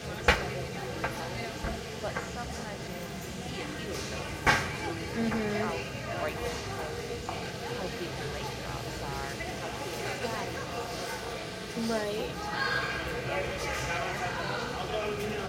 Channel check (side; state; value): both; identical; correlation 1.00